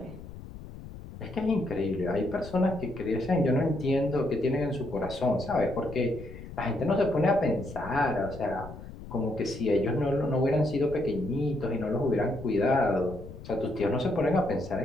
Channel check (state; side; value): noise; left; rumble, 14 dB below the sound